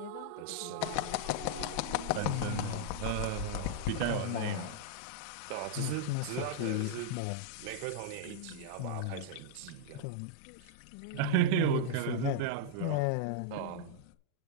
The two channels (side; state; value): both; different; correlation -0.01